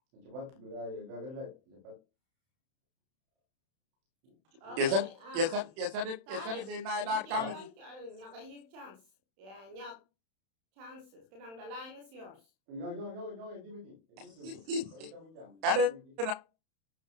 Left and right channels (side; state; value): left; late; 31 ms